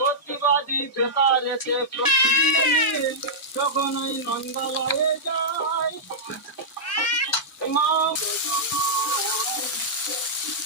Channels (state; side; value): normal; both; correlation -0.11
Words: বেকার এসে যখন ওই নন্দালয়ে যায় মা